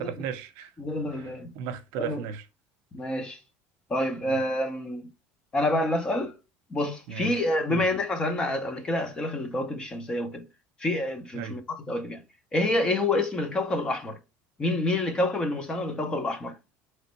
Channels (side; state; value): both; normal; correlation 0.57